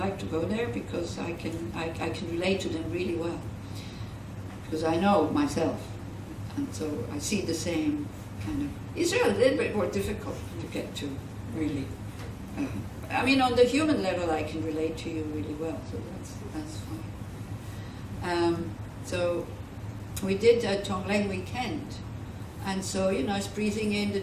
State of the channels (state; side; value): identical; both; correlation 1.00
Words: to go there because I can relate to them really well, because I know myself, and so I see the same kind of. Israel a little bit more difficult to get to, really. I mean, on the human level, I can relate to you really well, so that's fine. So we did a Tonglen weekend, and so, you know, it's breathing in the